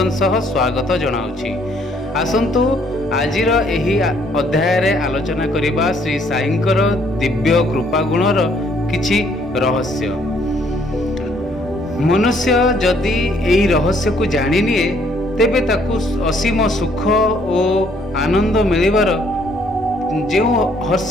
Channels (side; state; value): both; normal; correlation 0.65